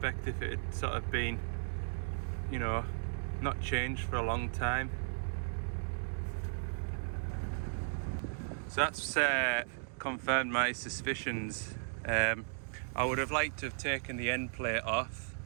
if it had sort of been, you know, not changed for a long time. So that's confirmed my suspicions. I would have liked to have taken the end plate off,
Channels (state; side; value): silent; left; digital silence